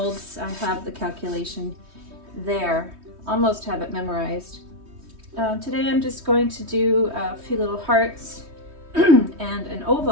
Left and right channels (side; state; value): left; late; 3.2 ms